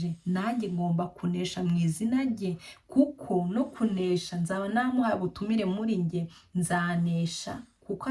nanjye ngomba kunesha mu izina rye, kuko no kunesha nzaba namuhaye ubutumire muri njye, nzanesha kuko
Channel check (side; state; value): both; identical; correlation 1.00